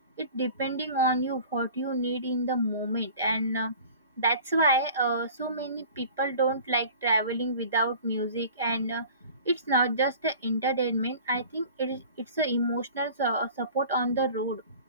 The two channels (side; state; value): both; inverted; correlation -0.43